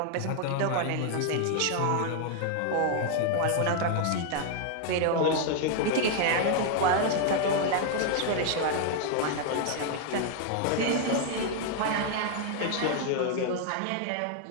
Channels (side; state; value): both; different; correlation 0.00